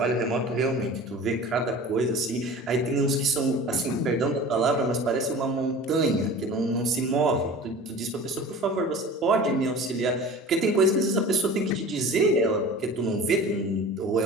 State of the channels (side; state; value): both; normal; correlation 0.39